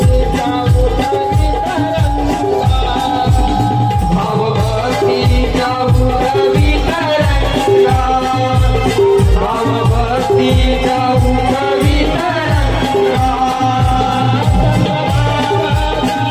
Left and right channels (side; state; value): both; identical; correlation 1.00